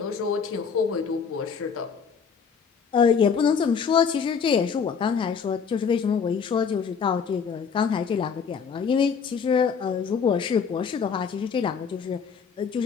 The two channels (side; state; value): right; quieter; 6.3 dB